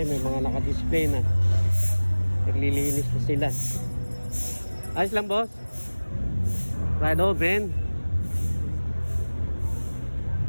mga naka-display na. Naglilinis na sila. Ayos lang, boss. Ride open.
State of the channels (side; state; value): both; inverted; correlation -1.00